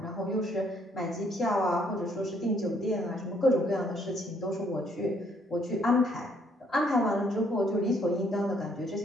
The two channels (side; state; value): both; normal; correlation 0.67